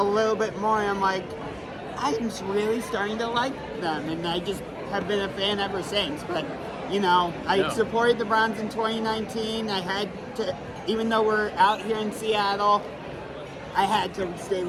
little bit more, and I'm like, I'm really starting to like them, and I just have been a fan ever since. But, I supported the Browns in 2019. I had to, even though we're out here in Seattle, I had to stay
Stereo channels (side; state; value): both; identical; correlation 1.00